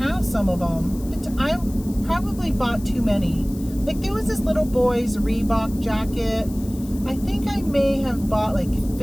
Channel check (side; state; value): left; noise; hiss, 20 dB below the sound